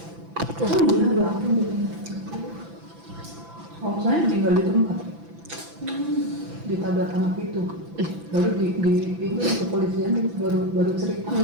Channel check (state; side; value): late; left; 6.0 ms